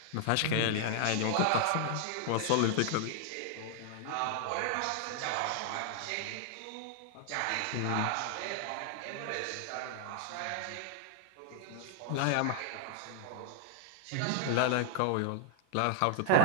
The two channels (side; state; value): both; different; correlation -0.01